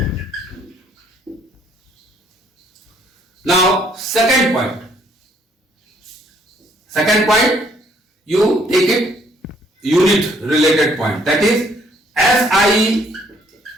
Now, second point, you take it unit related point, that is SI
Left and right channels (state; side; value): normal; both; correlation 0.65